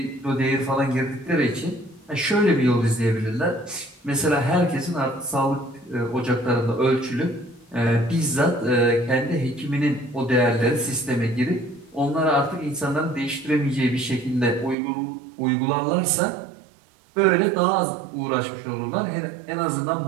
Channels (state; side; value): drops out; left; at 14.8 s